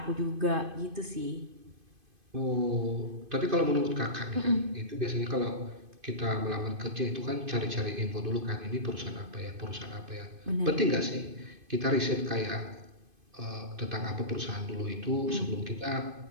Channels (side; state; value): left; late; 2.5 ms